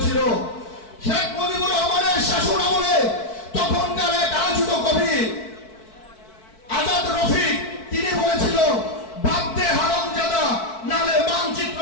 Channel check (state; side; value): late; right; 4.6 ms